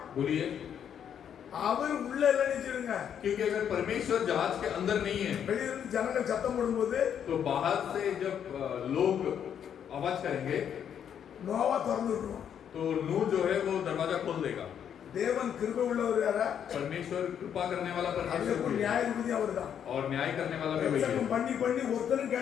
बोलिए। அவர் உள்ள இல்ல நினைச்சிருங்க। क्योंकि अगर परमेश्वर जहाज के अंदर नहीं है வெளியில இருந்து ஜனங்கள் சத்தம் போடும்போது तो बाहर से जब लोग आवाज करेंगे நோவா திறந்து விட்டுருவான்। तो नूह जो है वो दरवाजा खोल देगा। தேவன் கிருபை உள்ளவர் யாரா? परमेश्वर कृपा करने वाला அதுக்கு परमेश्वर भी है। நியாயாதிபதி அவர்தான்। और न्याय करने वाला भी वही है। பிரசங்கம் பண்ணி ஒருத்தரும்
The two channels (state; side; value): quieter; right; 8.7 dB